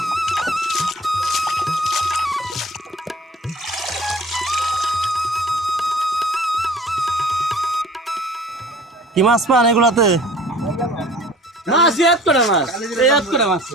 কি মাছ পান এগুলাতে? মাছ এক করে মাছ এক করে মাছ।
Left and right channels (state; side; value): normal; both; correlation 0.46